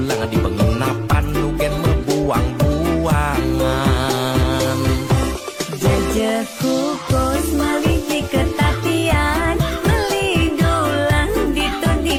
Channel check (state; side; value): identical; both; correlation 1.00